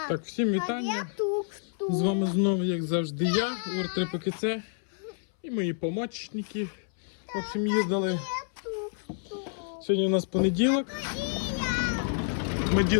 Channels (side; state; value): right; silent; 59 dB below the other